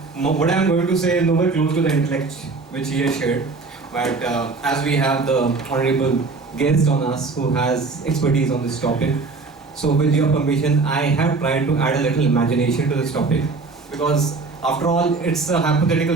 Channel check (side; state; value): left; quieter; 4.0 dB